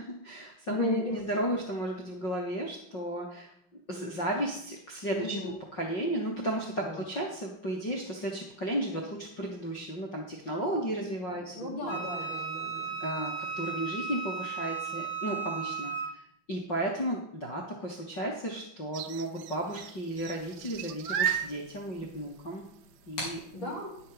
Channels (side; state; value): right; late; 5.5 ms